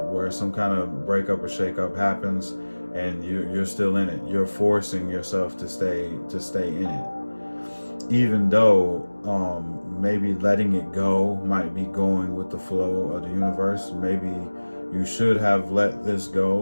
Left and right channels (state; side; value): inverted; both; correlation -1.00